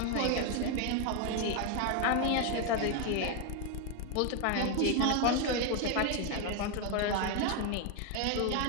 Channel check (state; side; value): different; both; correlation 0.01